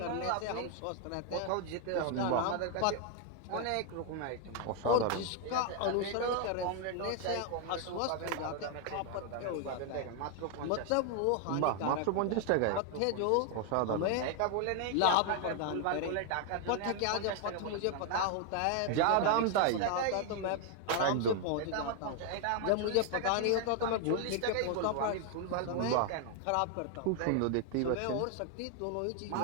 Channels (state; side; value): different; both; correlation 0.00